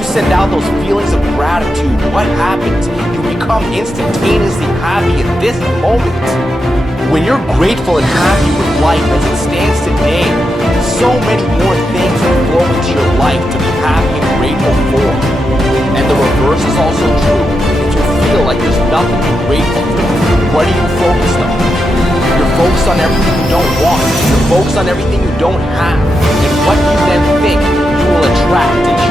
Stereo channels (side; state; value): both; normal; correlation 0.86